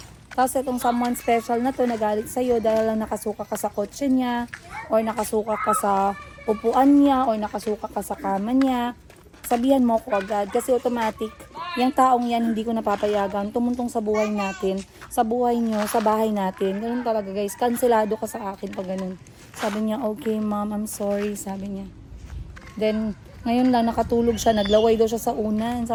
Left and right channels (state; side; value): identical; both; correlation 1.00